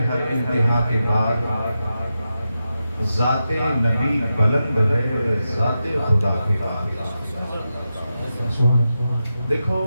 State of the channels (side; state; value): both; inverted; correlation -0.89